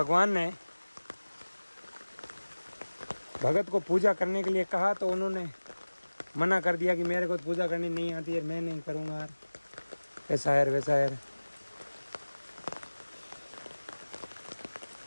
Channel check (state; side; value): inverted; both; correlation -1.00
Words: ने भगत को पूजा करने के लिए कहा तो उन्होंने मना कर दिया कि मेरे को पूजा करनी नहीं आती है, मैं नहीं करूँगा यार, ऐसा है वैसा है।